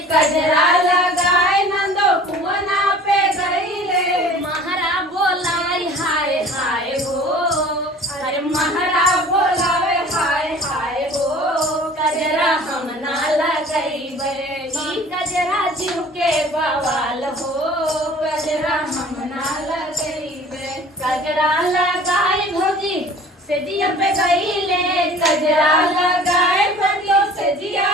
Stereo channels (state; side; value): normal; both; correlation 0.46